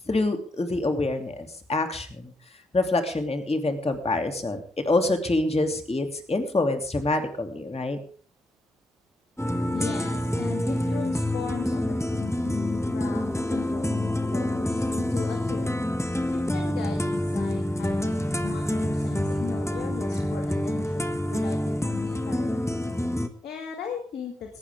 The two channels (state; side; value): normal; both; correlation 0.85